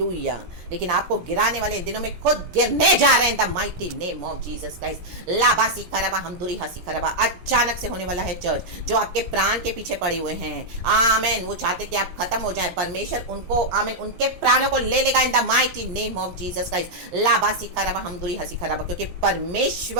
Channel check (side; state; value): left; late; 17 ms